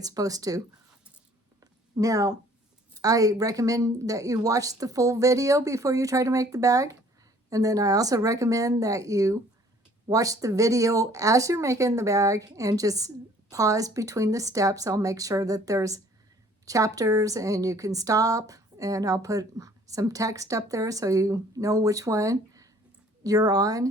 supposed to. Now, I recommend that you watch the full video before you try to make the bag. And then I also recommend that you watch the video as you're making the bag and just pause between the steps. I'll make sure that there's chapters and you can stop, and I'll put some text up there so you know which one you're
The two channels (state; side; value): normal; both; correlation 0.56